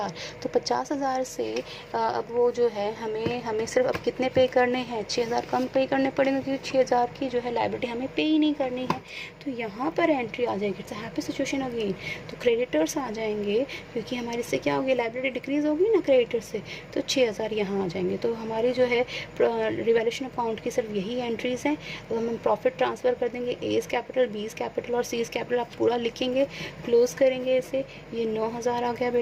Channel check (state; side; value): identical; both; correlation 1.00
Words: तो 50,000 से अब वो जो है हमें सिर्फ अब कितने पे करने हैं, 6,000 कम पे करने पड़ेंगे, क्योंकि 6,000 की जो है लायबिलिटी हमें पे ही नहीं करनी है, तो यहाँ पर एंट्री आ जाएगी, इट्स हैप्पी सिचुएशन होगी, तो क्रेडिटर्स आ जाएंगे, क्योंकि हमारे इससे क्या होगी, लायबिलिटी डिक्रीज़ होगी ना क्रेडिटर से, तो 6,000 यहाँ आ जाएंगे। तो हमारी जो है रिवैल्यूएशन अकाउंट की सिर्फ यही एंट्रीज़ हैं। तो हम प्रॉफिट ट्रांसफ़र कर देंगे, एज़ कैपिटल, बीज़ कैपिटल और सीज़ कैपिटल आप पूरा लिखेंगे, क्लोज करेंगे इसे, ये 9,000 आ गया